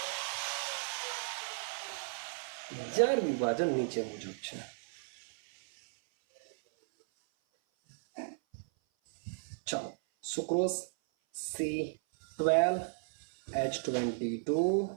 જાર વિભાજન નીચે મુજબ છે. ચાલો, sucrose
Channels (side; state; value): left; silent; 55 dB below the other